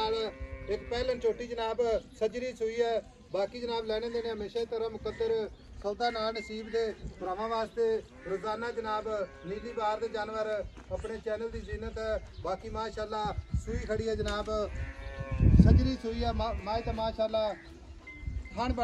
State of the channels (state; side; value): identical; both; correlation 1.00